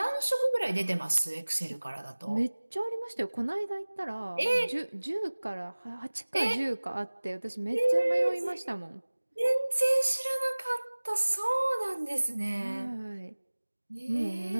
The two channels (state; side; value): inverted; both; correlation -1.00